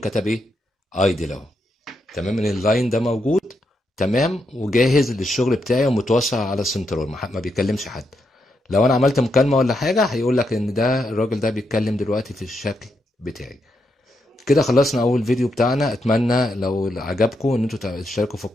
ايه؟ ايدل اهو، تمام، ان اللاين ده موجود، تمام، وجاهز للشغل بتاعي ومتوصل على السنترال، ما بيكلمش حد. لو انا عملت مكالمه ولا حاجه هيقول لك ان ده الراجل ده بيتكلم دلوقتي في الشكل بتاعي. كده خلصنا اول فيديو بتاعنا. اتمنى لو عجبكم ان انتوا تشتركوا في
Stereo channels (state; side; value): normal; both; correlation 0.81